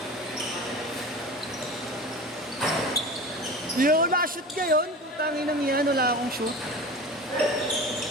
Yo, na-shoot ngayon. Tangin ng yan, wala akong shoot.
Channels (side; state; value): both; normal; correlation 0.33